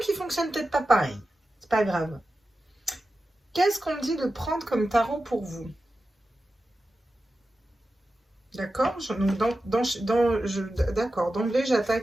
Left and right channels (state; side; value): normal; both; correlation 0.92